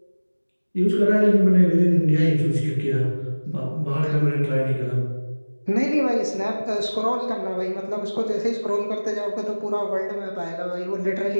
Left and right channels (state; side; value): inverted; both; correlation -1.00